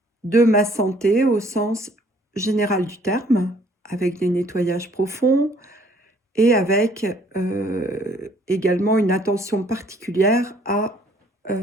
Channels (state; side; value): normal; both; correlation 0.60